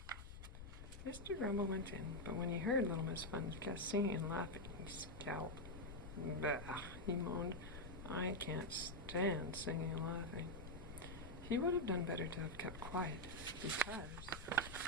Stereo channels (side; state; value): left; noise; rumble, 11 dB below the sound